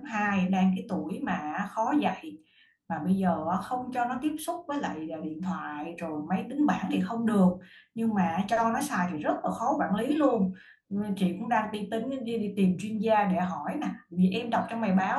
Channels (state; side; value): identical; both; correlation 1.00